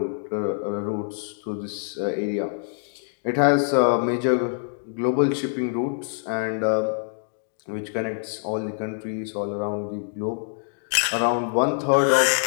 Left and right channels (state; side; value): silent; right; digital silence